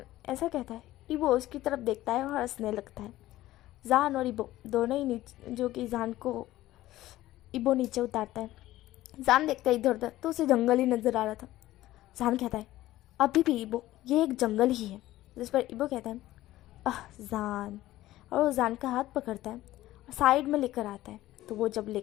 ऐसा कहता है। इबो उसकी तरफ देखता है और हंसने लगता है। जान और इबो दोनों ही नीचे, जो कि जान को इबो नीचे उतारता है। जान देखता है इधर उधर तो उसे जंगल ही नज़र आ रहा था। जान कहता है अभी भी इबो ये एक जंगल ही है। जिस पर इबो कहता है जान, और वो जान का हाथ पकड़ता है और साइड में लेकर आता है। तो वो जब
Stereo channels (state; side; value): quieter; right; 15.6 dB